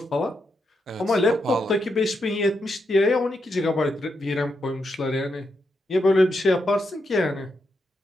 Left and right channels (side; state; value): both; normal; correlation 0.82